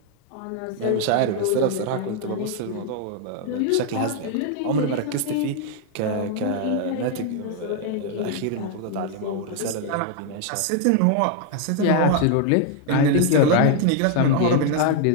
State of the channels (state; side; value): different; both; correlation 0.00